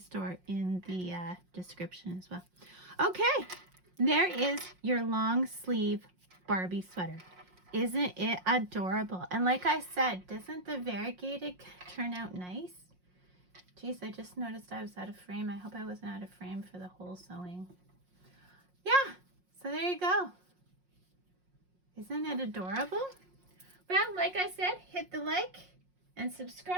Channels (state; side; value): late; left; 5.5 ms